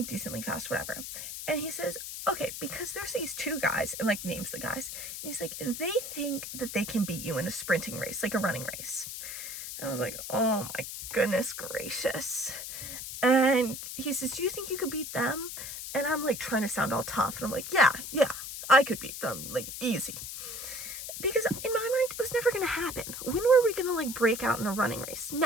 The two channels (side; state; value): left; noise; hiss, 8 dB below the sound